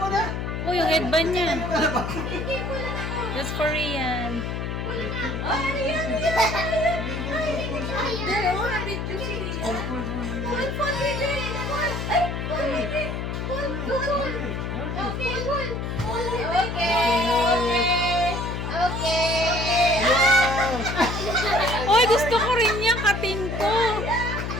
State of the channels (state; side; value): noise; left; hum, 3 dB below the sound